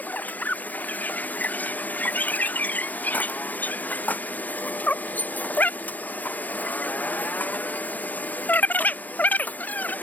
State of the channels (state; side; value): late; right; 0.082 ms